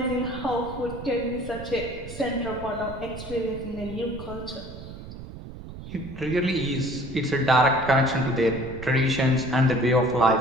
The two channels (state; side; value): noise; right; rumble, 12 dB below the sound